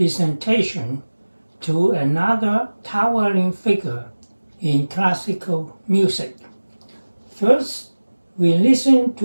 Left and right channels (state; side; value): inverted; both; correlation -1.00